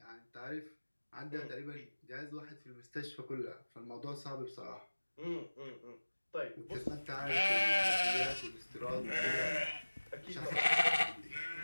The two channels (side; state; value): both; inverted; correlation -1.00